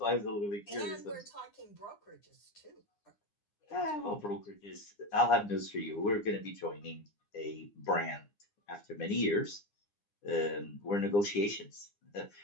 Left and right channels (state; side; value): late; right; 9.8 ms